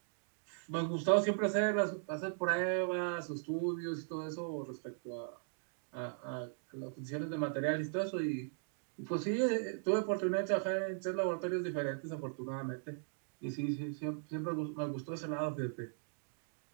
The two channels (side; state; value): left; silent; digital silence